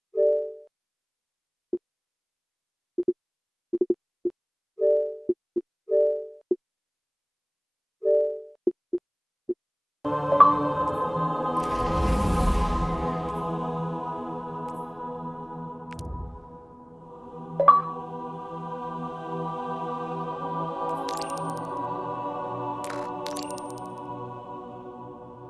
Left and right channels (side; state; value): both; identical; correlation 1.00